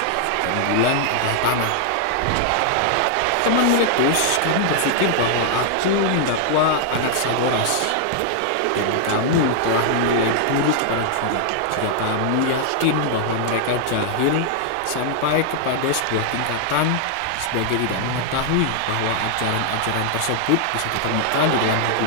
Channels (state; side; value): different; both; correlation -0.01